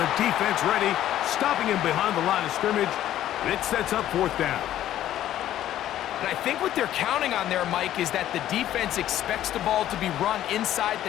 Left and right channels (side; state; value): right; quieter; 12.4 dB